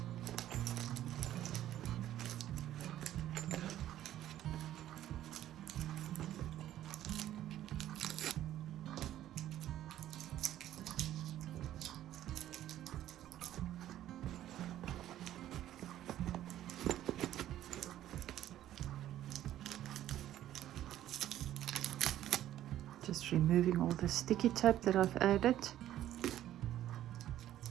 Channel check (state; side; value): quieter; left; 12.6 dB